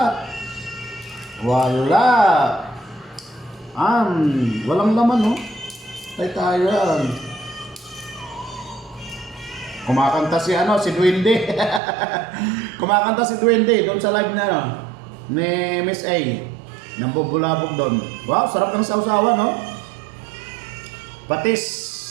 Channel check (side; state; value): left; drops out; at 11.8 s